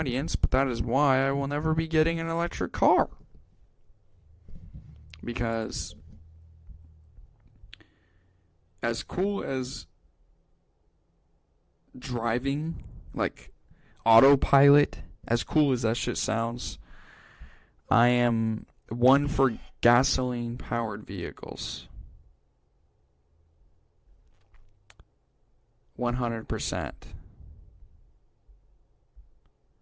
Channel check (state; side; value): identical; both; correlation 1.00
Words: but that is why I will never be getting an electric car. Because as cool as driving, like autopilot, as cool as that shit sounds, I am one for gasoline-powered vehicles. 100%.